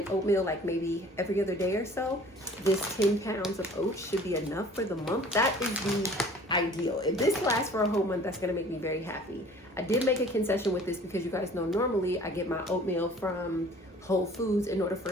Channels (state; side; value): normal; both; correlation 0.49